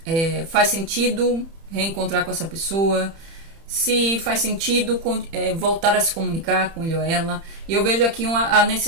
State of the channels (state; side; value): late; left; 30 ms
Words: faz sentido reencontrar com essa pessoa, se faz sentido voltar a se comunicar com ele ou ela. E eu vejo aqui a